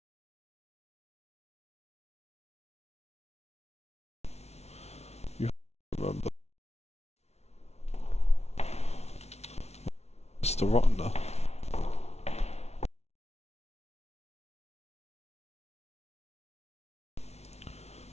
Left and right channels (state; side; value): late; right; 0.31 ms